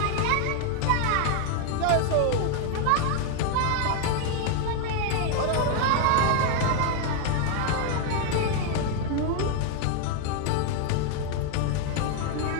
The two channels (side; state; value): both; different; correlation 0.01